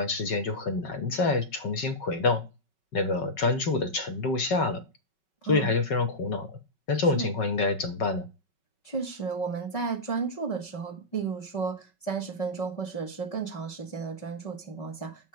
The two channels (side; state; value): right; late; 5.3 ms